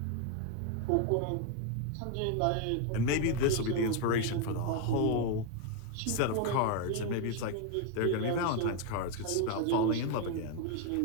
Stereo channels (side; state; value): both; different; correlation 0.01